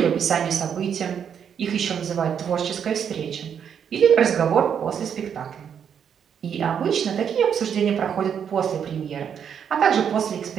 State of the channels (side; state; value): left; quieter; 7.9 dB